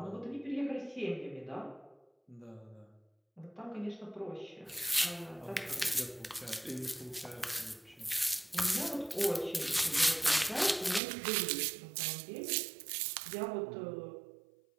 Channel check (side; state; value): left; drops out; at 11.0 s